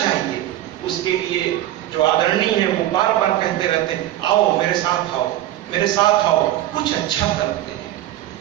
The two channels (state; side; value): quieter; left; 13.7 dB